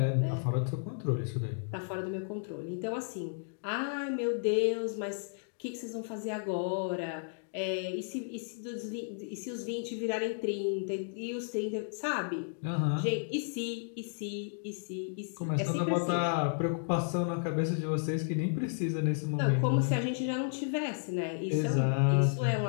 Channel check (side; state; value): right; silent; digital silence